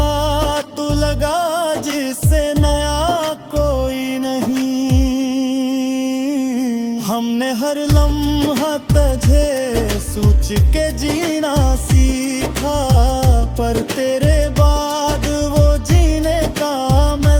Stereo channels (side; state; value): both; identical; correlation 1.00